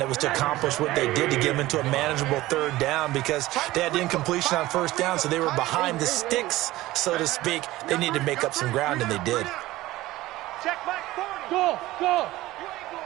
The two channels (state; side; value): quieter; left; 17.3 dB